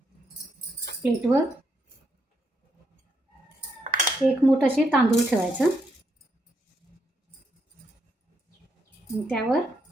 प्लेटवर एक मूठ असे तांदूळ ठेवायचं आणि त्यावर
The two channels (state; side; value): normal; both; correlation 0.77